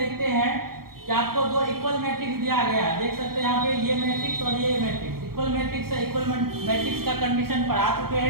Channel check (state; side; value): late; left; 0.94 ms